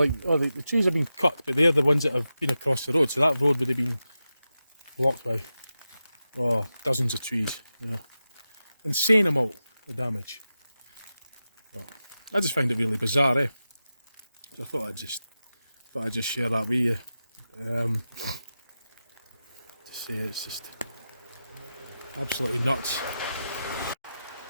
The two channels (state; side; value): inverted; both; correlation -0.92